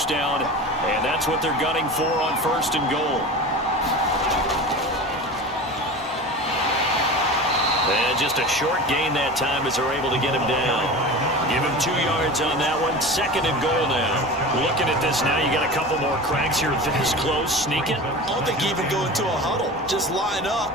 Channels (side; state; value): both; normal; correlation 0.32